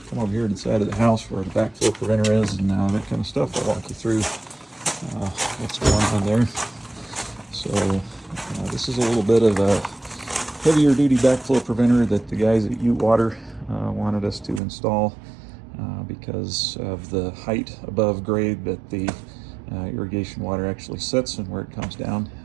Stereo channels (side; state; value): left; drops out; at 14.6 s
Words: over here to the side of the house where the backflow preventer is and that kind of stuff. I'll walk you through what's going on there. So this is a little bit of a heavier duty backflow preventer that the guys at Ute Water wanted us to install because of the height above grade that the irrigation water actually sits and where it comes down.